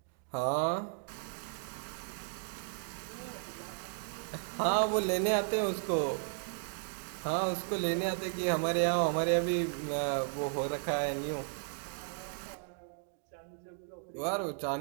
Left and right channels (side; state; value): left; silent; digital silence